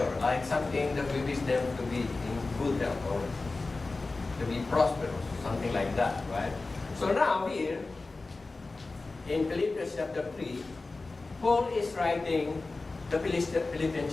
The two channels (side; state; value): right; quieter; 3.5 dB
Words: like something that we wish them to be in good health or to be prosperous, something like that, right? So now here, in Philippians chapter 3, Paul is writing the Philippian